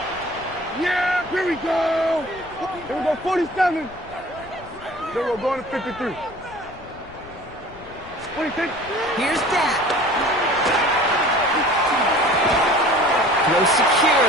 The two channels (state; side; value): noise; left; rumble, 20 dB below the sound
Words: Yeah, here we go. Here we go, 47. Then we're going to 53. 26. Here's Dak. Throw